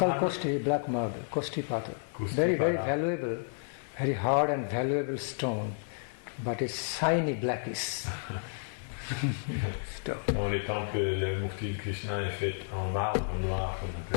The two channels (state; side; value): silent; right; 57 dB below the other